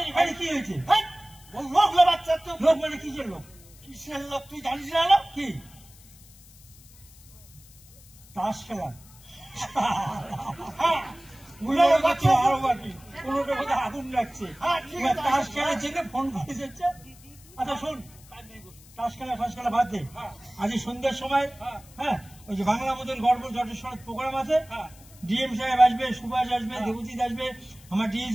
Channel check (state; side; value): noise; left; hiss, 23 dB below the sound